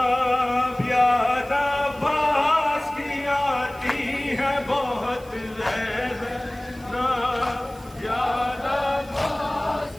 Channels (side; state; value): right; noise; hiss, 24 dB below the sound